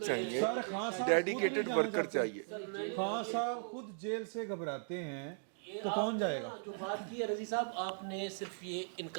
سر خان صاحب خود dedicated نہیں جانا worker چاہتے. چاہیے. خان صاحب خود جیل سے گھبراتے ہیں تو کون جائے گا؟ جو بات کی ہے رضی صاحب, آپ نے صرف یہ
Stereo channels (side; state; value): left; silent; digital silence